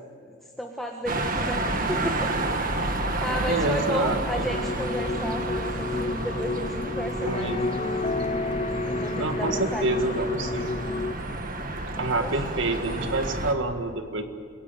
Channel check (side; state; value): both; normal; correlation 0.26